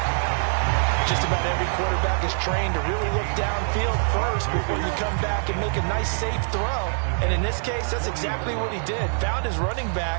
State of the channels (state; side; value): silent; left; digital silence